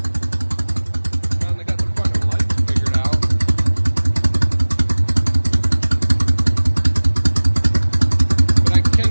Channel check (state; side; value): inverted; both; correlation -1.00